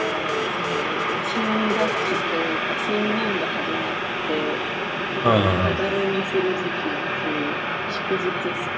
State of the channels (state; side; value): identical; both; correlation 1.00